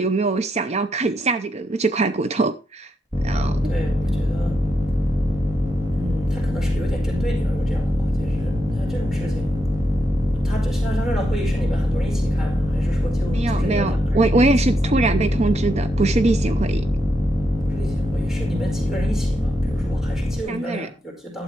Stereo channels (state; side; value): normal; both; correlation 0.82